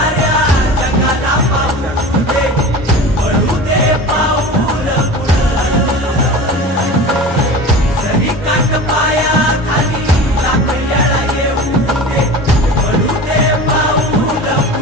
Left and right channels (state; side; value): normal; both; correlation 0.34